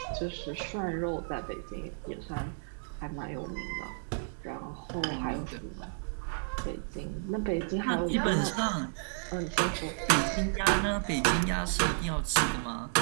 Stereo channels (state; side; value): silent; left; digital silence